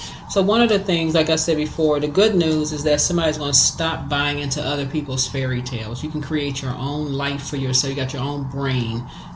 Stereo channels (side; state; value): both; identical; correlation 1.00